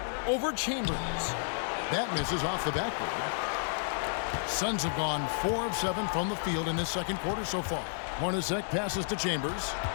Over Chambers. That misses off the backboard. Suns have gone 4 of 7 from the field in this second quarter so far. Hornacek passes to Chambers.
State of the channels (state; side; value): silent; right; 57 dB below the other